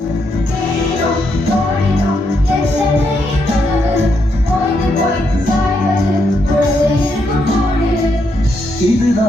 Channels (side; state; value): both; normal; correlation 0.78